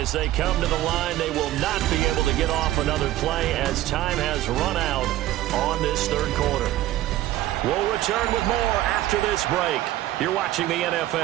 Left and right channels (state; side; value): quieter; left; 14.8 dB